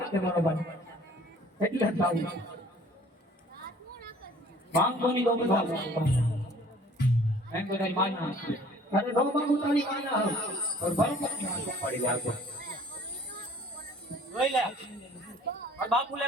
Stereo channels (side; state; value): both; normal; correlation 0.53